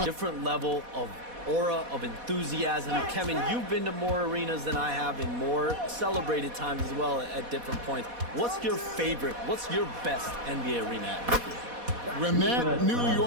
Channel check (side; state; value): left; late; 4.1 ms